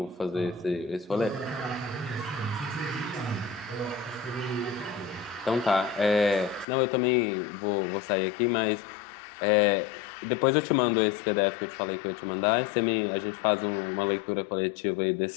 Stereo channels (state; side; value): drops out; right; at 6.7 s